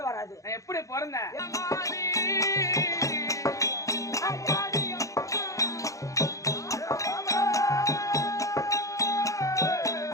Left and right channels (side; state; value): right; late; 0.16 ms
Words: வராது. நான் எப்படி பிறந்தேன்?